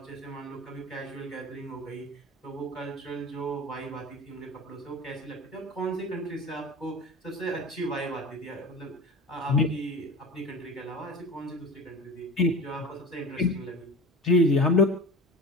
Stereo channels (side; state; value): both; normal; correlation 0.33